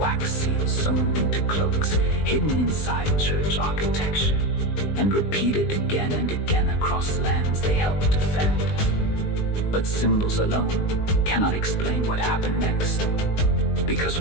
seals, sewn into cloaks, hidden inside church architecture, and repeated again and again across lands they helped defend. But symbols alone cannot explain what happened next, because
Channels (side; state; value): right; late; 20 ms